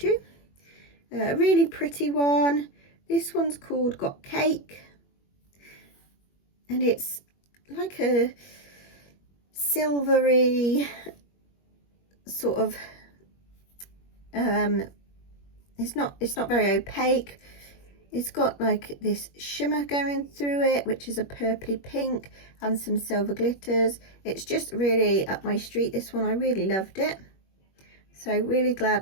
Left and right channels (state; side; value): late; right; 21 ms